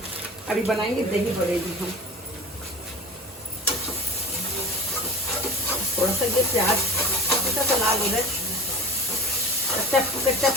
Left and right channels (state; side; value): normal; both; correlation 0.38